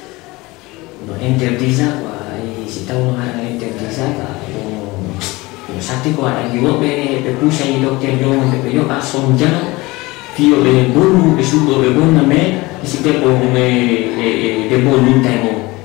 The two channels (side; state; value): right; quieter; 22.0 dB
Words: No interdisa kwa si tahu orang interdisa ka sakit kwa lagi wo be pusha ni dokter yo be yo asom jana fio be bolu be sudo be bona me si te po me de bolu taimo